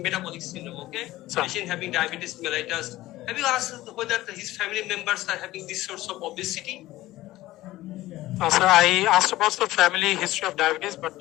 metabolic syndrome, okay? Sir. Patient having diabetes mellitus. Have you asked whether his family members are having this source of obesity? Sir, I asked about the family history of diabetes, but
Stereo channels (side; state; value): right; quieter; 16.7 dB